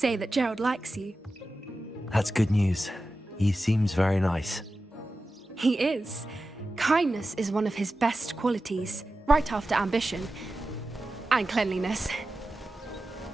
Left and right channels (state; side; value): normal; both; correlation 0.93